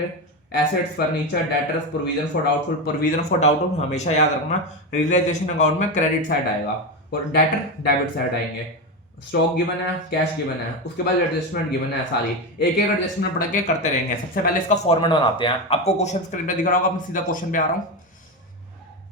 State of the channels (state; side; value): normal; both; correlation 0.15